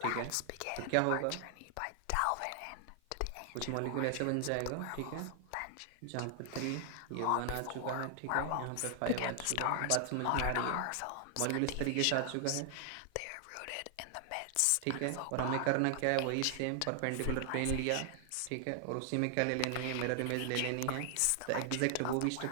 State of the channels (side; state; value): both; different; correlation 0.00